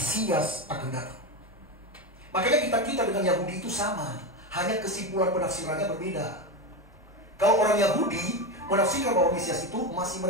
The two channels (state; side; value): normal; both; correlation 0.17